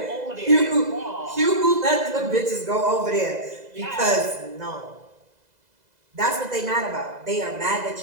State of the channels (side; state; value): left; late; 2.0 ms